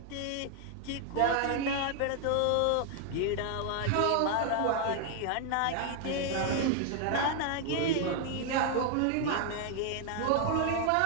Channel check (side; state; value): both; different; correlation 0.00